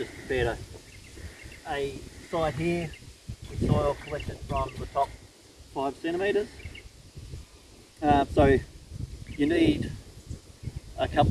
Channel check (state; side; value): identical; both; correlation 1.00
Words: prepared a site here with soil collected from the top 5 centimetres. So you need a